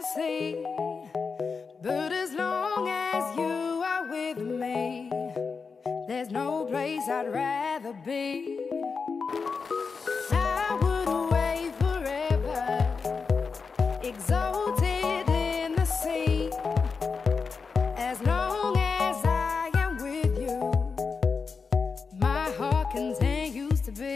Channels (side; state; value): right; quieter; 5.1 dB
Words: sea. But as long as you are with me, there's no place I'd rather be. I would away forever, exalted in the sea. As long as I am with you, my heart continues to